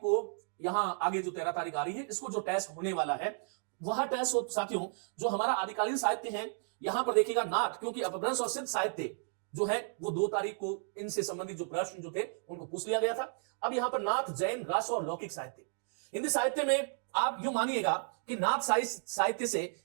यहां आगे जो 13 तारीख आ रही है, इसको जो टेस्ट होने वाला है वह टेस्ट हो साथियों जो हमारा आदिकालीन साहित्य है। यहां पर देखिएगा नाथ, क्योंकि अपभ्रंश और सिद्ध साहित्य जो है वो 2 तारीख को इनसे संबंधित जो प्रश्न जो थे उनको पूछ लिया गया था। अब यहां पर नाथ, जैन, रास और लौकिक साहित्य। हिंदी साहित्य में आप यूं मानिएगा कि नाथ साहित्य से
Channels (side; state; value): left; silent; 55 dB below the other